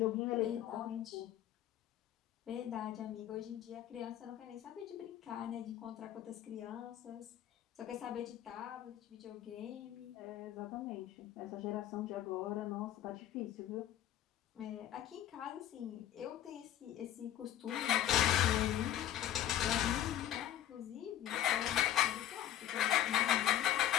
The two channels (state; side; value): quieter; right; 11.6 dB